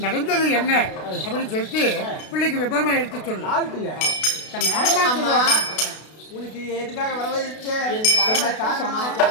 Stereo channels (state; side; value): late; right; 32 ms